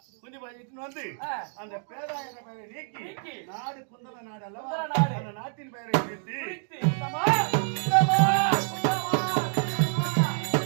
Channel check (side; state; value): left; silent; digital silence